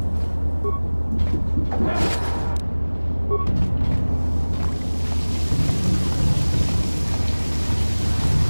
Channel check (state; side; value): inverted; both; correlation -1.00